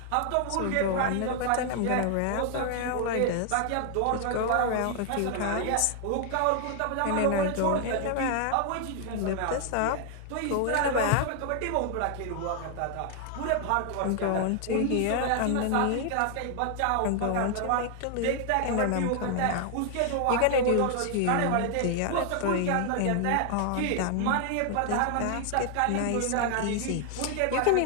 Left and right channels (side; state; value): both; different; correlation 0.00